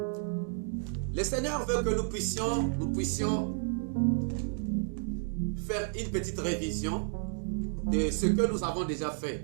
Seigneur veut que nous puissions faire une petite révision de ce que nous avons déjà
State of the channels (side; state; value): left; silent; 57 dB below the other